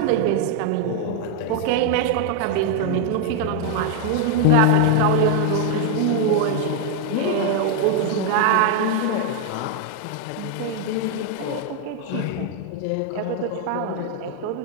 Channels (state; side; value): different; both; correlation 0.00